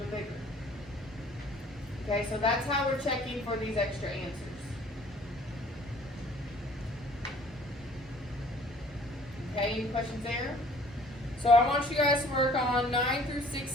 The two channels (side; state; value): both; normal; correlation 0.54